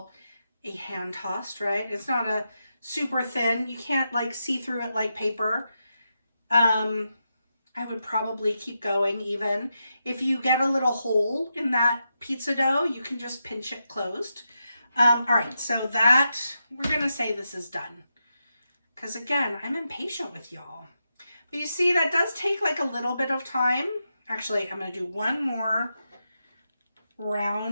a hand tossed, right? It's not a super thin. You can't like see through it like paper. I would probably keep going even. If you get a little hole in that pizza dough, you can just pinch it closed. All right, so that, we're going to say this is done. Because again, I'm impatient with y'all. But you see, that does take like a little bit of time. Actually, I'm going to do one more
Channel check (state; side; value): inverted; both; correlation -0.86